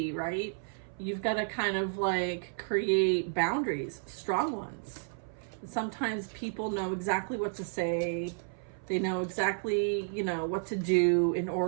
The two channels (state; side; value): silent; left; 57 dB below the other